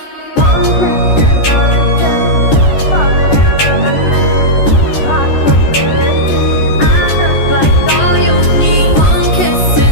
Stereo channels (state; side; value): late; right; 14 ms